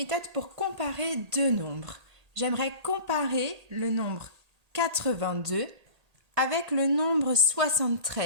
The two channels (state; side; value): late; left; 1.8 ms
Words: pour comparer deux nombres. J'aimerais comparer le nombre 82 avec le nombre